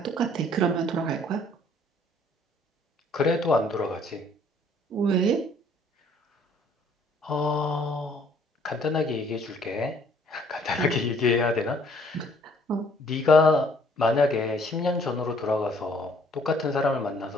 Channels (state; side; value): normal; both; correlation 0.61